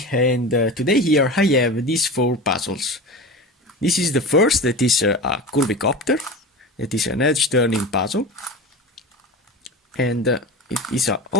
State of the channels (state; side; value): normal; both; correlation 0.30